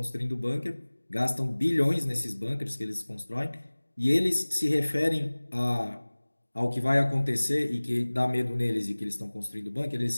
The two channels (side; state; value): both; inverted; correlation -1.00